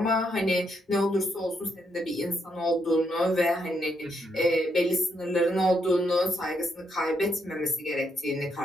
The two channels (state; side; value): normal; both; correlation 0.77